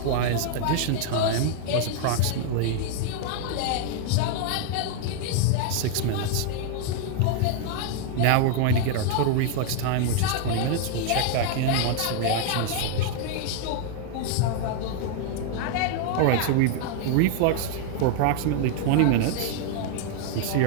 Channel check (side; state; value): both; different; correlation 0.00